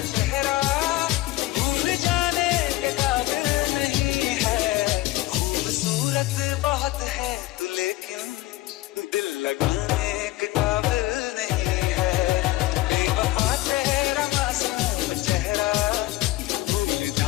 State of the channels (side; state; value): right; quieter; 17.9 dB